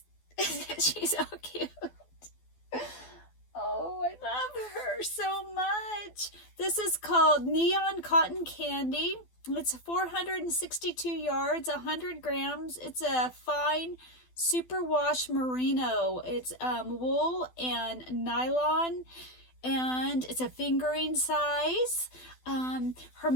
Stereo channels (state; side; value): late; right; 12 ms